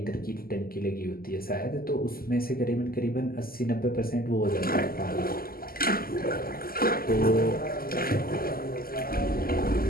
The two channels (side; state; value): right; late; 0.42 ms